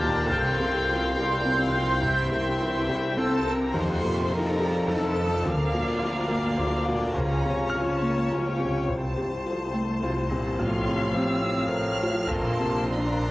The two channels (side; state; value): both; normal; correlation 0.97